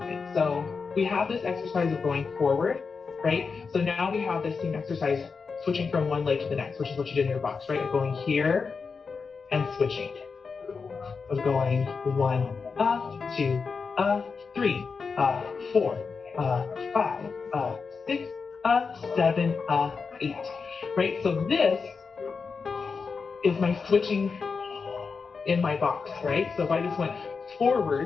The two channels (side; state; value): right; quieter; 5.1 dB